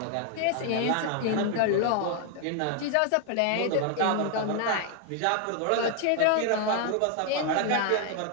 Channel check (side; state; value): both; different; correlation 0.00